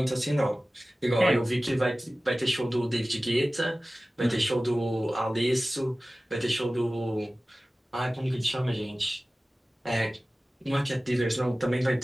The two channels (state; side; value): normal; both; correlation 0.97